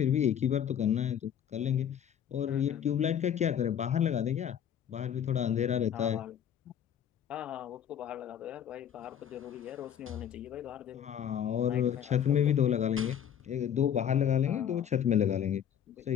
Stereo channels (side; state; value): right; quieter; 9.2 dB